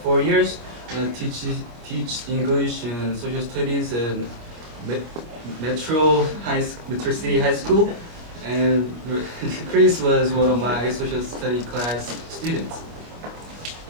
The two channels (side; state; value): left; late; 25 ms